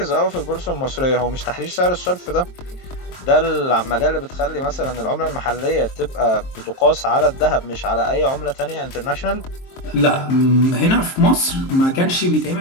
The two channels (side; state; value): right; late; 23 ms